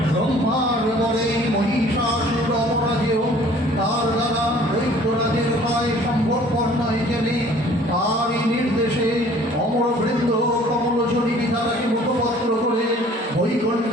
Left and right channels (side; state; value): both; normal; correlation 0.53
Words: ব্রহ্মার বলে মহিষাসুর অপরাজেয়, তার দ্বারা দৈত্যরাজের ভয় সম্ভবপর নয় জেনে তারই নির্দেশে অমরবৃন্দ কমলজনী বিধাতাকে মুখপত্র করে